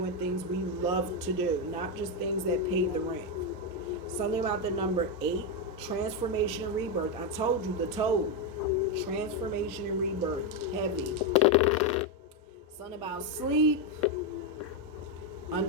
things we love to do, not just things that pay the rent. Something about the number 8, transformation and rebirth. I told you, the toad. Transformation and rebirth. Heavy. Something about sleep.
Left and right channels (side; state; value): both; normal; correlation 0.06